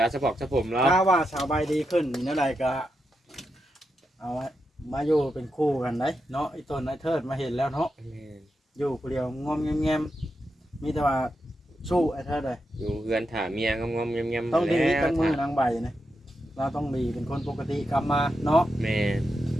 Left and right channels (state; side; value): normal; both; correlation 0.86